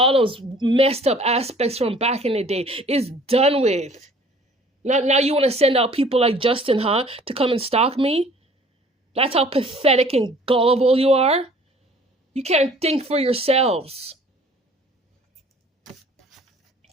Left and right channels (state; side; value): normal; both; correlation 0.52